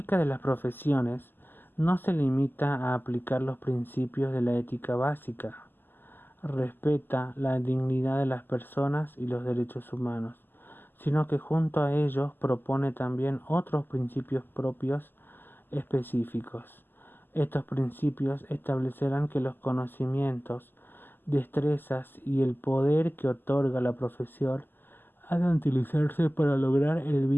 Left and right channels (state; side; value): late; right; 0.093 ms